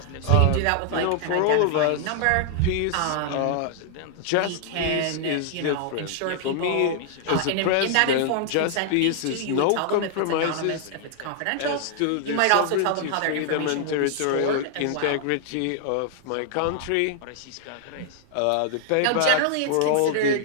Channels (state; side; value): different; both; correlation -0.01